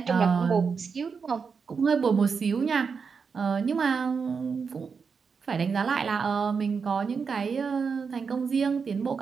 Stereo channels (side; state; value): left; quieter; 5.6 dB